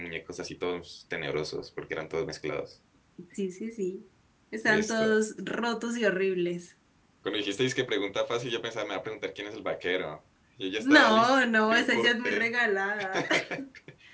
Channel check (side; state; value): both; identical; correlation 1.00